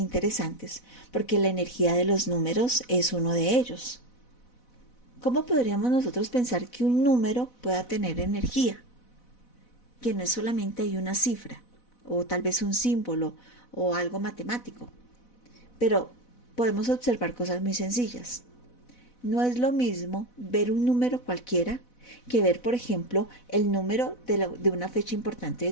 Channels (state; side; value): late; right; 4.0 ms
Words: porque la energía de los números es uno de ellos. ¿Cómo podríamos nosotros pensar que un número pueda tener energía? Que no es solamente hay una cifra, o tal vez un símbolo, o algo matemático. Pero podemos observar cosas muy sencillas. No es lo mismo ver un número cualquiera que ver, por ejemplo, el número de una fecha importante de